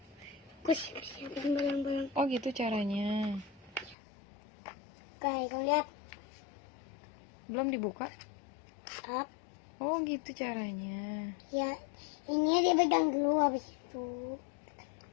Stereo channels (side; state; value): right; drops out; at 4.0 s